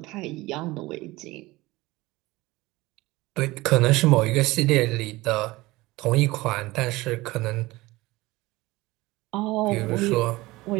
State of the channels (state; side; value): quieter; left; 20.2 dB